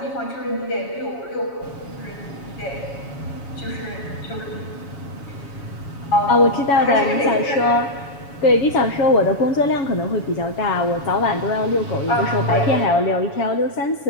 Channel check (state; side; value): late; right; 7.2 ms